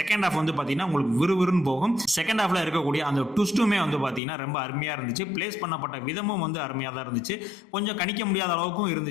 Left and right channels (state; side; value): drops out; right; at 4.2 s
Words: ஹாஃப் வந்து பார்த்தீங்கன்னா உங்களுக்கு விறுவிறுன்னு போகும். செகண்ட் ஹாஃப்ல இருக்கக்கூடிய அந்த ட்விஸ்ட்டுமே வந்து பார்த்தீங்கன்னா ரொம்ப அருமையாக இருந்துச்சு. பிளேஸ் பண்ணப்பட்ட விதமும் வந்து அருமையாக தான் இருந்துச்சு. கொஞ்சம் கணிக்க முடியாத அளவுக்கும்